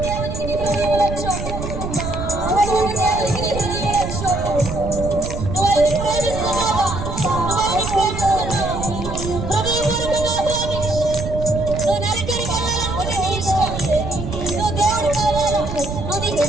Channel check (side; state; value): right; noise; rumble, 6 dB below the sound